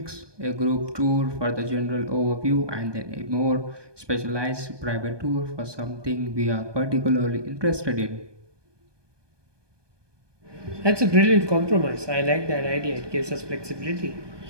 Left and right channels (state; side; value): late; left; 1.2 ms